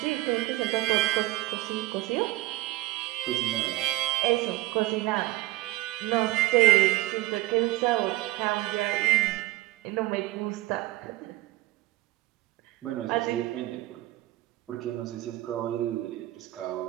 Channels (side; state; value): left; quieter; 18.0 dB